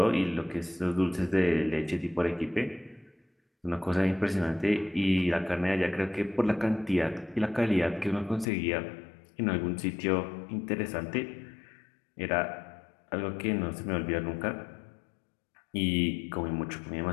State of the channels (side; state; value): right; drops out; at 8.5 s